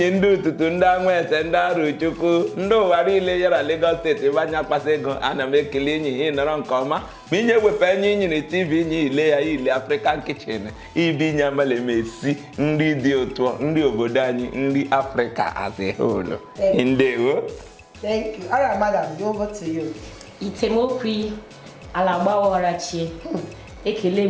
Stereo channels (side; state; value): both; identical; correlation 1.00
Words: ndị ụtụtụ ndị anwete ndị arụ chukwu ndị ụwa niile yara Lagos steeti ebe anya akpasa ego ana m ekele enyi ihe nọrọ nke ọma ma inye wepụ enyi inyere TV inye ile ya ile African kitchen ibi nye amala esi nri dị ụtọ nri obodo anyị nri Africa as a whole. Ndewo. Thank you. All right, madam, over to you. Itemokwi alagbawarachi ekele